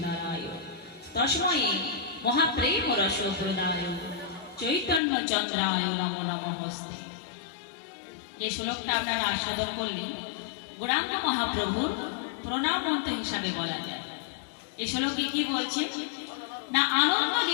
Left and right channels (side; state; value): right; drops out; at 5.0 s